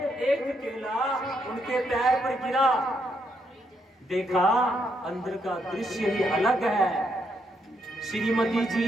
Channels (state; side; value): normal; both; correlation 0.77